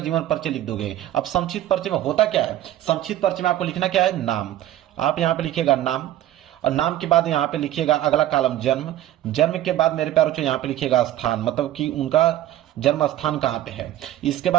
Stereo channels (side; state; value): left; quieter; 13.2 dB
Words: जीवन परिचय लिख दोगे। अब संक्षिप्त परिचय में होता क्या है, संक्षिप्त परिचय में आपको लिखना क्या है, नाम। आप यहाँ पे लिखिएगा नाम, और नाम के बाद यहाँ पे लिखिएगा अगला कॉलम जन्म। जन्म के बाद मेरे प्यारे बच्चों यहाँ पे लिखिएगा स्थान, मतलब कि उनका जन्म स्थान कहाँ पे है। इसके